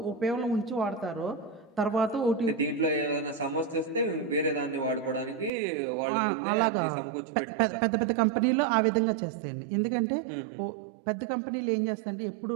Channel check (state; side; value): drops out; left; at 5.5 s